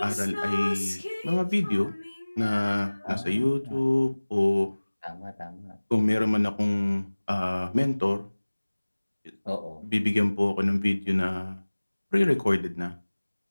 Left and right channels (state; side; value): inverted; both; correlation -1.00